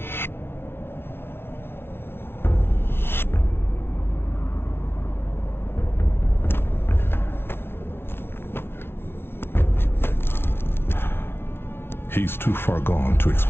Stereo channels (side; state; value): right; late; 0.11 ms